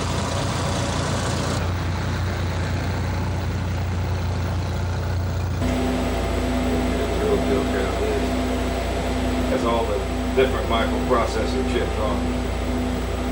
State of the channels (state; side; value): identical; both; correlation 1.00